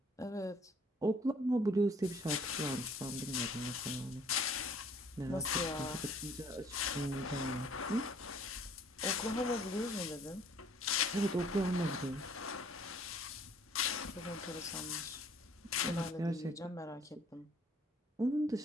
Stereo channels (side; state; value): both; normal; correlation 0.58